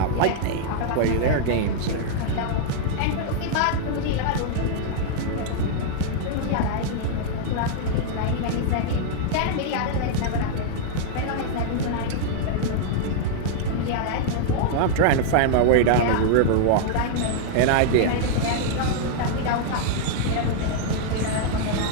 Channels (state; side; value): different; both; correlation -0.01